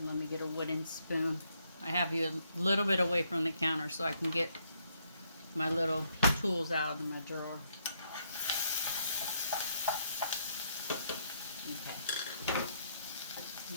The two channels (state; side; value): inverted; both; correlation -0.75